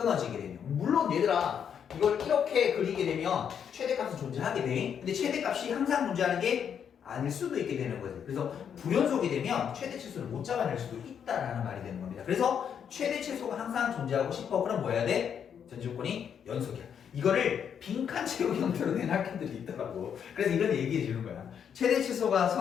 되면. 물론 얘들아 이걸 이렇게 그리게 되면 최대값은 존재하게 돼. 근데 최대값이 항상 존재하는 게 아닐 수도 있게 되는 거예요. 그래서 불연속이 되면 최대 최소를 못 잡아낼 수도 있다라는 말이 되는 겁니다. 그래서 최대 최소가 항상 존재하고 싶어. 그럼 뭐 해야 돼? 전제 조건이 연속이야. 이거를 빈칸 채우기 형태로 낸 학교들이 있더라고. 그래서 이건 얘기해 주는 거야. 최대 최소가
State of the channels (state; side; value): quieter; right; 8.0 dB